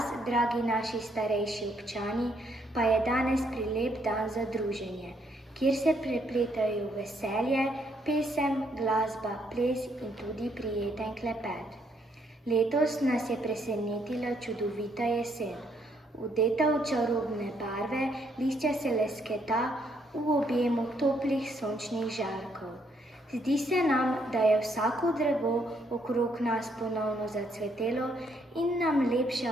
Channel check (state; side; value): normal; both; correlation 0.72